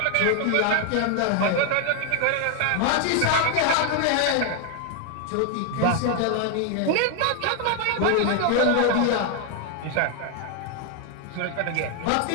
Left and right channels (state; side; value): different; both; correlation 0.00